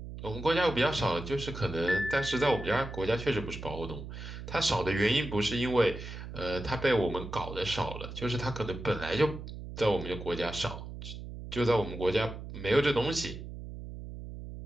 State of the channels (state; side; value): noise; right; hum, 10 dB below the sound